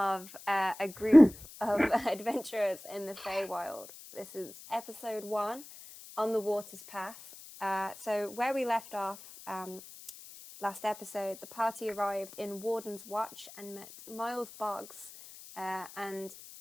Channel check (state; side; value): noise; left; hiss, 17 dB below the sound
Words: a group of adventurers in the Feywild. This is episode 1, On the Water's Path. So where we left off last episode, the party arrived in Warden's Watch and met Miles Boggs, and